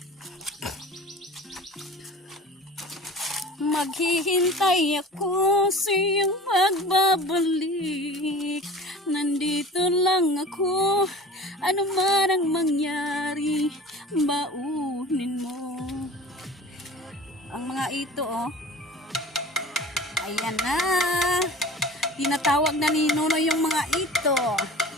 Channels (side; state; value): both; normal; correlation 0.41